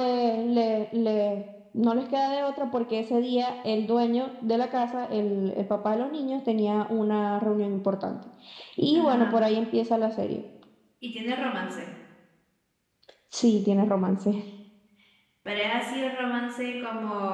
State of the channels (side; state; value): both; identical; correlation 1.00